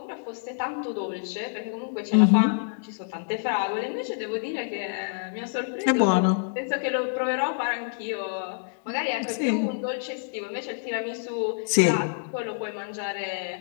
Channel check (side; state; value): right; silent; digital silence